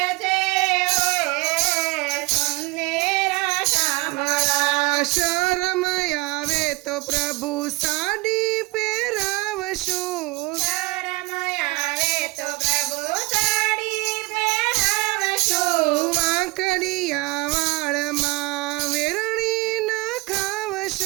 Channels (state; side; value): quieter; left; 24.6 dB